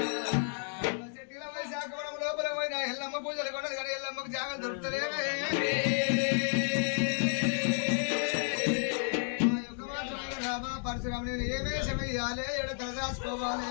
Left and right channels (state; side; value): silent; right; 56 dB below the other